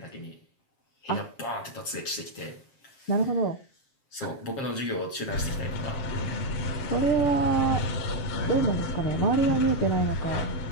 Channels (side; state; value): right; late; 7.4 ms